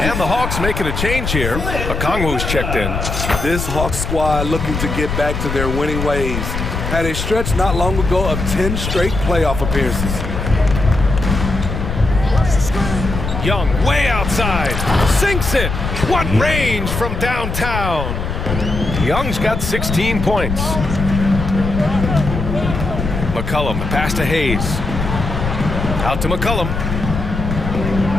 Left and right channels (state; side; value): noise; left; rumble, 4 dB below the sound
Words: And the Hawks making a change here. Okongwu's checked in. This Hawks squad looking to get back to their winning ways. Had a stretch not long ago of 10 straight playoff appearances. Young way outside. Sinks it. What range from downtown. Young's got 16 points. McCollum, pass to Hayes. Out to McCollum.